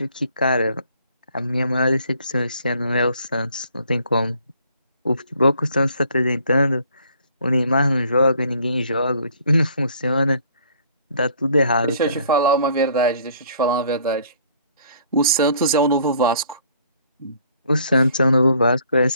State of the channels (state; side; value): inverted; both; correlation -0.59